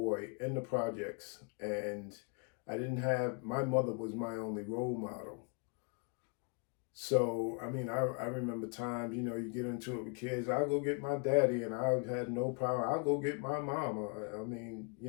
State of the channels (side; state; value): right; quieter; 36.0 dB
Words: in the projects, and my mother was my only role model. So, I mean, I remember times, you get into it with kids. I'll go get my daddy, and I had no power. I'll go get my mama. I mean,